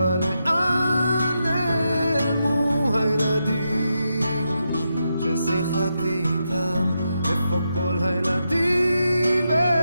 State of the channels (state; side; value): inverted; both; correlation -0.85